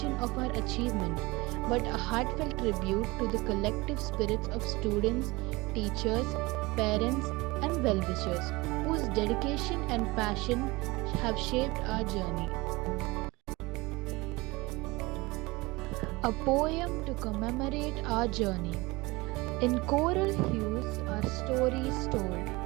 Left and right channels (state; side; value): quieter; left; 22.8 dB